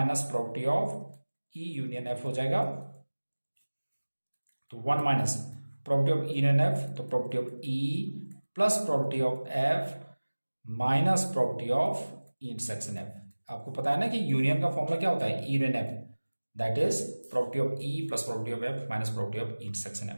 property of E union F हो जाएगा। तो 1 minus property of E union F, तो property of E plus property of F minus property of E intersection F. आपको पता है ना कि यूनियन का फॉर्मूला क्या होता है, E union F, that is property of E plus property of F minus property of E intersection F.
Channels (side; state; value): both; inverted; correlation -1.00